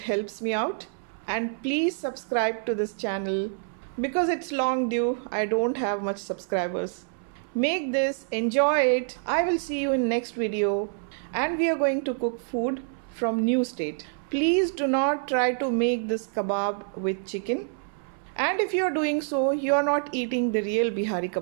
helps me out. And please subscribe to this channel because it's long due. I don't have much subscribers. Make this, enjoy it. I will see you in next video, and we are going to cook food from new state. Please do not try to make this kebab with chicken. And if you are doing so, you are not eating the real Bihari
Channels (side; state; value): left; silent; 60 dB below the other